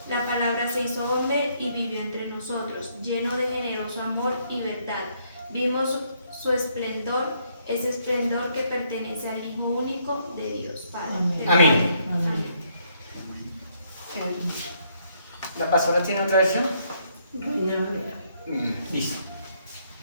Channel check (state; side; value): inverted; both; correlation -0.71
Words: La palabra se hizo hombre y vivió entre nosotros, lleno de generoso amor y verdad. Vimos su esplendor, ese esplendor que pertenece al Hijo único de Dios Padre. Amén. Amén. ¿La pastora tiene otra versión? Listo.